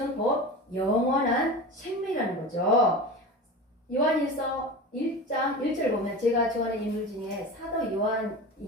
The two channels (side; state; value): both; normal; correlation 0.30